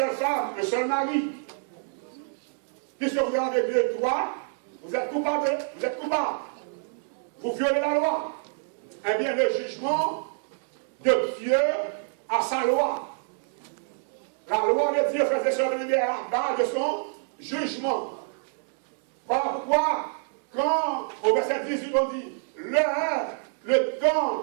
femme, un seul mari. Puisque vous avez 2 droits, vous êtes coupable. Vous êtes coupable. Vous violez la loi. Eh bien, le jugement de Dieu a sa loi. La loi de Dieu faisait survenir à la base de son jugement. Voilà pourquoi, quand au verset 18 on dit le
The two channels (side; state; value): left; silent; 60 dB below the other